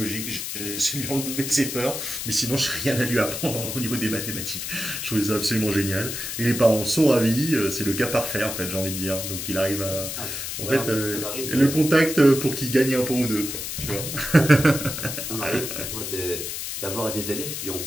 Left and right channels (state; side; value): noise; left; hiss, 5 dB below the sound